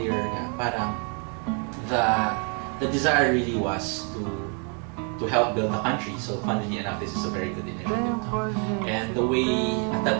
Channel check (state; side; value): quieter; left; 38.5 dB